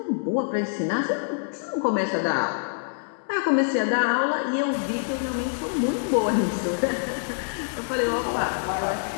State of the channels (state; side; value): silent; right; digital silence